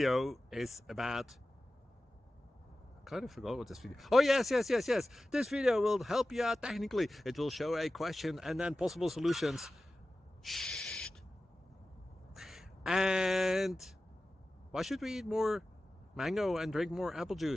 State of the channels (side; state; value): both; normal; correlation 0.95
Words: is about, I kind of forgot what this video. Oh yes. This video will help you out technically. It will show a question and then possible solutions. Shh. And why should we eat more mango and drink more apple